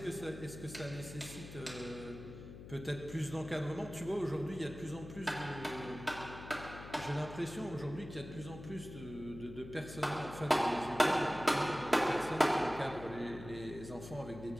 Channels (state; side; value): noise; left; hum, 12 dB below the sound